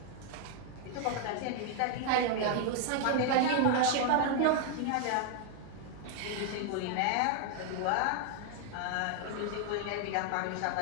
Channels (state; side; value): different; both; correlation 0.00